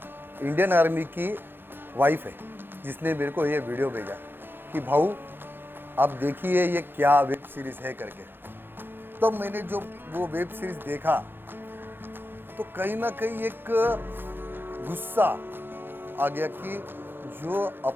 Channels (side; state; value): left; late; 0.10 ms